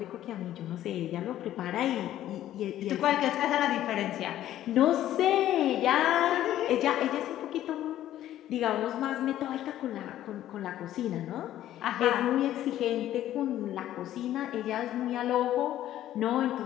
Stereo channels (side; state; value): right; quieter; 12.7 dB